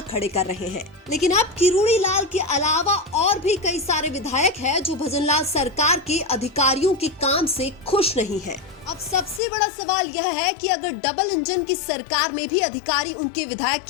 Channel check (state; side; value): drops out; right; at 9.4 s